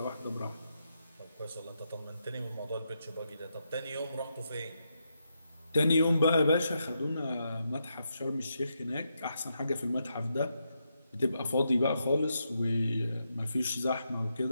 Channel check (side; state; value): both; inverted; correlation -0.83